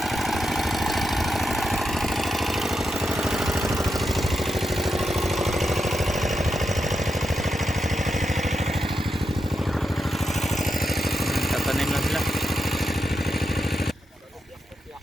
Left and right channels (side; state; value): both; normal; correlation 0.86